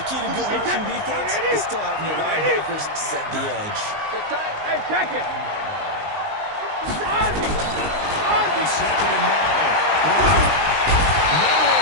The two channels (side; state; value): left; late; 19 ms